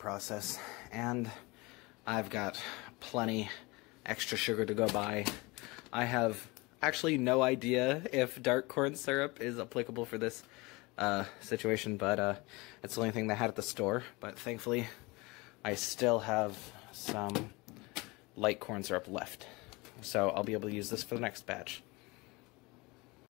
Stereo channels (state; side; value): quieter; right; 24.5 dB